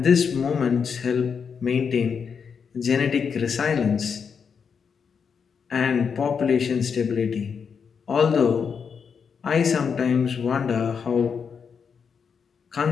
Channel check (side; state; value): right; quieter; 6.4 dB